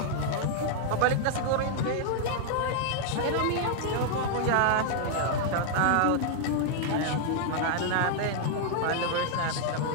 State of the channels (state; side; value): different; both; correlation -0.01